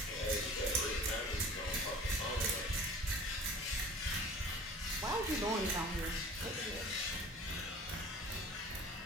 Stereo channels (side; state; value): both; normal; correlation 0.44